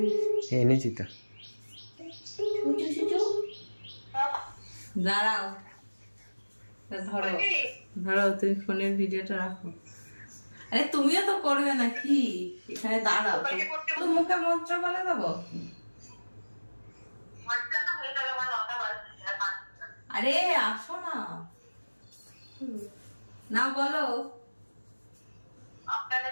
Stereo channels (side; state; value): both; inverted; correlation -1.00